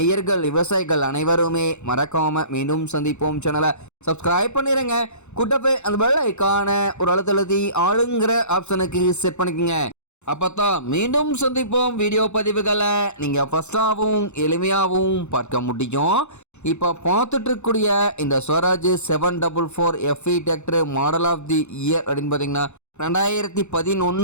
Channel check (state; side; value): late; right; 0.82 ms